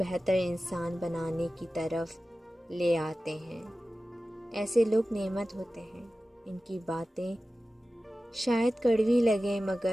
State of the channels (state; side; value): normal; both; correlation 0.95